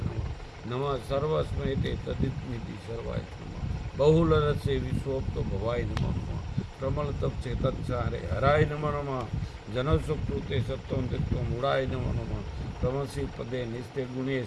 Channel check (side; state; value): both; identical; correlation 1.00